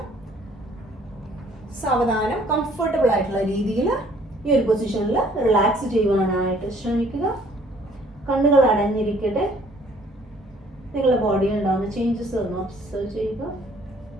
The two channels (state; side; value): normal; both; correlation 0.59